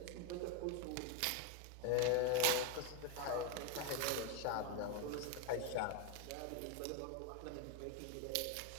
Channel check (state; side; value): different; both; correlation 0.02